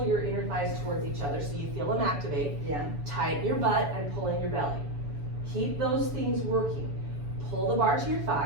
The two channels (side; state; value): left; late; 7.0 ms